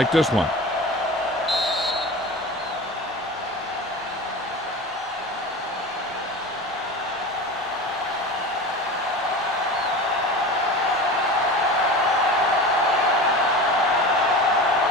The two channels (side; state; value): both; normal; correlation 0.32